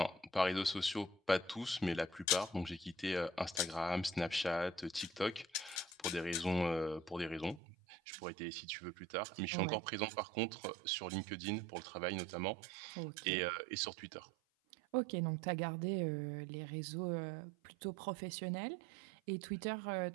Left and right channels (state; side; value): drops out; left; at 7.6 s